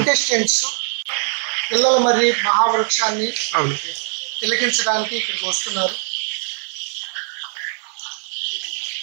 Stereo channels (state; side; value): silent; left; digital silence